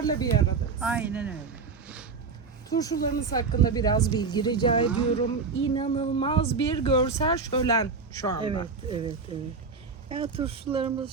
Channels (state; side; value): quieter; left; 4.8 dB